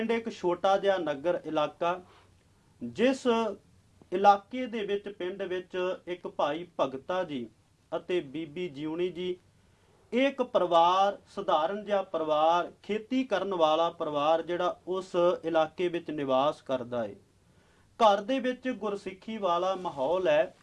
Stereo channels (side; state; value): both; identical; correlation 1.00